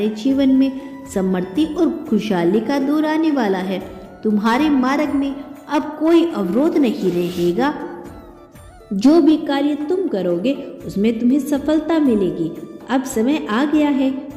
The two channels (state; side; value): identical; both; correlation 1.00